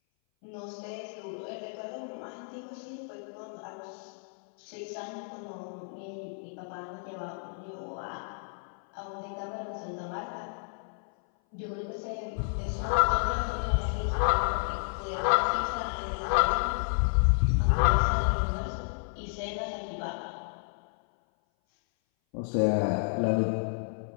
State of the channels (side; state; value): right; silent; 57 dB below the other